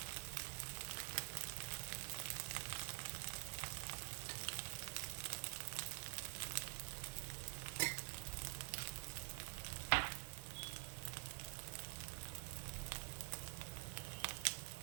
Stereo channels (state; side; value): silent; left; digital silence